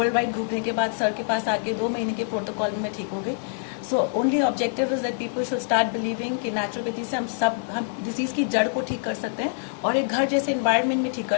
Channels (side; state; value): right; silent; 62 dB below the other